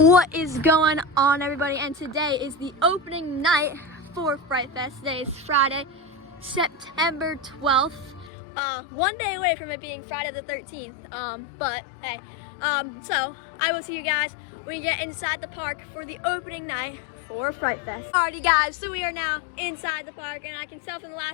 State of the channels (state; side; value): drops out; right; at 8.3 s